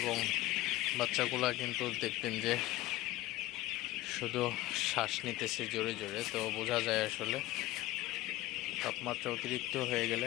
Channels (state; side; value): quieter; right; 16.8 dB